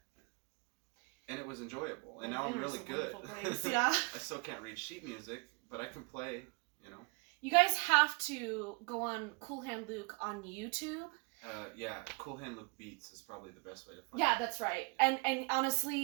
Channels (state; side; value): quieter; left; 31.1 dB